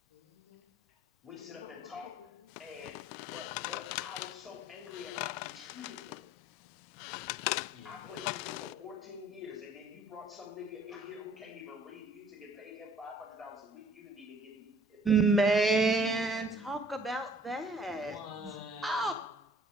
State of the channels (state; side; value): normal; both; correlation 0.55